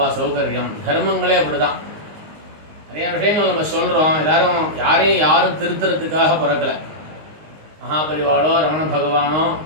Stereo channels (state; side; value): late; left; 19 ms